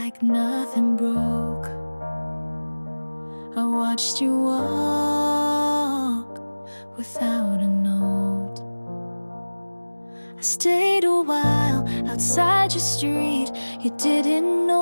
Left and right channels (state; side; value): inverted; both; correlation -1.00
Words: nothing broke. I watched you walk without a note. I stayed a while outside your street. You didn't